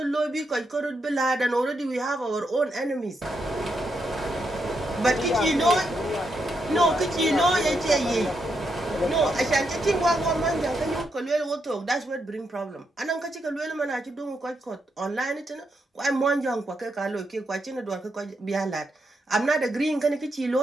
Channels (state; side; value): normal; both; correlation 0.81